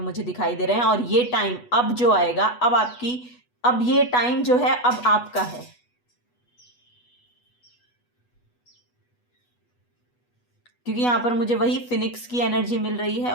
दिखाई दे रहे हैं। और ये टाइम अब जो आएगा, अब ये टाइम जो है अब आपका है। क्योंकि यहाँ पर मुझे वही फिनिक्स की एनर्जी मिल रही है।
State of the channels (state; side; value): late; right; 8.2 ms